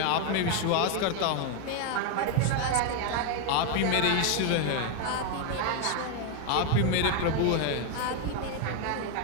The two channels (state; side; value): different; both; correlation 0.01